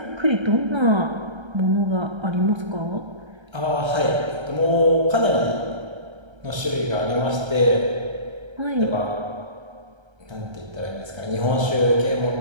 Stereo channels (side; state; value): left; late; 1.3 ms